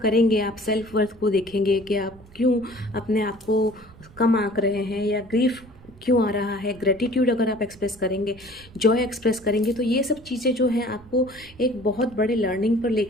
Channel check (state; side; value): noise; right; rumble, 23 dB below the sound